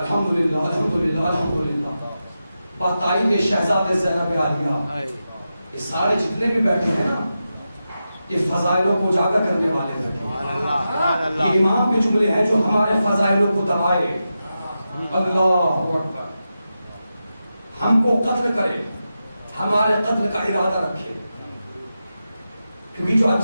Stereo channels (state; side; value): inverted; both; correlation -0.90